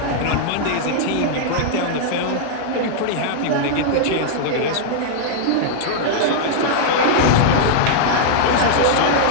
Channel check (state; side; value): different; both; correlation -0.01